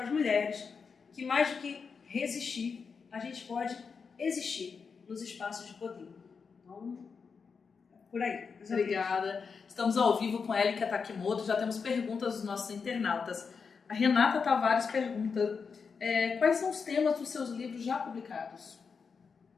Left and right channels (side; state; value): right; quieter; 5.5 dB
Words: as mulheres que mais do que resistir, a gente pode existir nos espaços de poder. Então, por aí. Obrigada. Estamos ao vivo com Elika Takimoto, já temos perguntas dos nossos internautas. A Renata Tavares pergunta, quais são os temas dos seus livros já publicados?